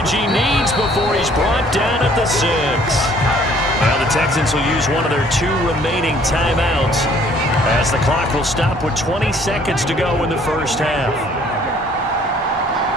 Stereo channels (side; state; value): both; normal; correlation 0.59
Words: he needs before he's brought down at the 6. Now the Texans will use one of their 2 remaining timeouts As the clock will stop with 20 seconds to go in the first half.